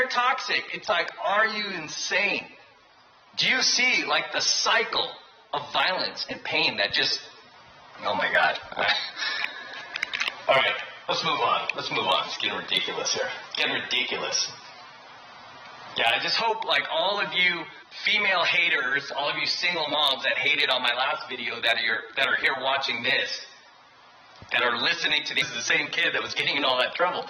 toxic. It's like, are you insane? Do you see like the cycle of violence and pain that just, oh my God. All right. Let's move on. Let's move on. It's getting ridiculous here. Getting ridiculous. Yeah, I just hope, like, all of you female haters, all of you single moms that hated on my last video that are here watching this, that are listening to this, is the same kid that was getting in all that trouble,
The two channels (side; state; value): both; identical; correlation 1.00